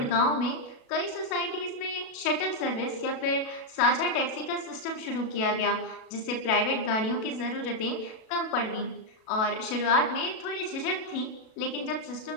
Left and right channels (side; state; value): right; late; 37 ms